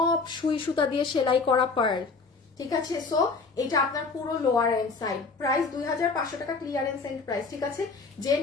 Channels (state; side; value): quieter; right; 4.4 dB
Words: সুই সুতা দিয়ে সেলাই করা পার্ল, ঠিক আছে। সো এটা আপনার পুরো লোয়ার এন্ড সাইড, প্রাইস 2500 টাকা ক্লিয়ারেন্স এন্ড প্রাইস, ঠিক আছে। যে